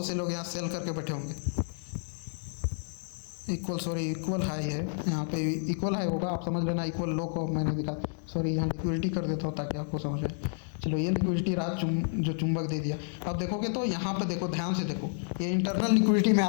से लोग यहाँ सेल करके बैठे होंगे। इक्वल हाई है, यहाँ पे इक्वल हाई होगा, आप समझ लेना। इक्वल लो को मैंने दिखा, यहाँ लिक्विडिटी कर देता हूँ ताकि आपको समझ आए। चलो ये लिक्विडिटी रात जो चुंबक दे दिया। अब देखोगे तो यहाँ पे देखो, ध्यान से देखो, ये इंटरनल लिक्विडिटी में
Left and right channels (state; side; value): silent; right; digital silence